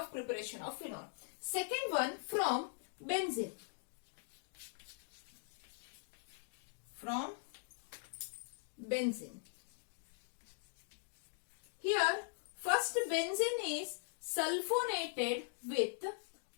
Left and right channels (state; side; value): silent; right; digital silence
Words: preparation of phenol. Second one, from benzene. Here, first benzene is sulfonated with